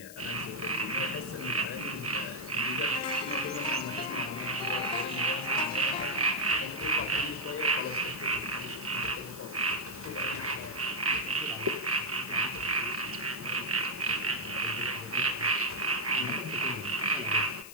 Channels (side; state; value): left; noise; hiss, 15 dB below the sound